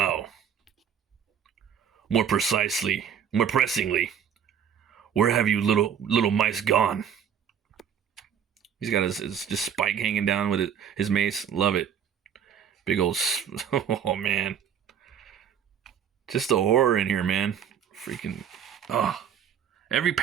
More precisely, more pressingly, where have you little mice gone? He's got his just spike hanging down with his mace. Love it. Big old, oh man. Just the horror in here, man. Freaking, oh. Every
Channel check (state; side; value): quieter; left; 8.3 dB